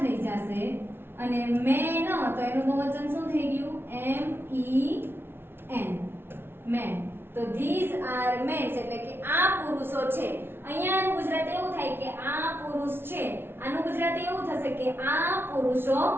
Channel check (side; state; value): left; late; 0.11 ms